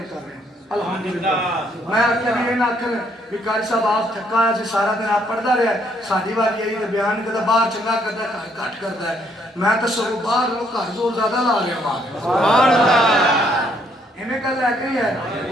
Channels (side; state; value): both; normal; correlation 0.69